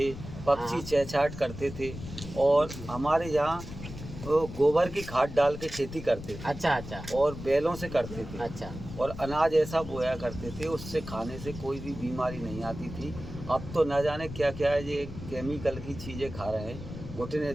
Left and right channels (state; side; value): noise; left; rumble, 11 dB below the sound